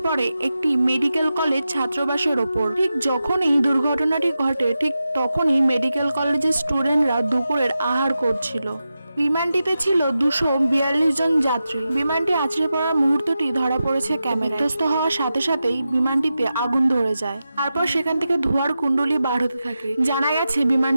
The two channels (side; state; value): both; inverted; correlation -0.91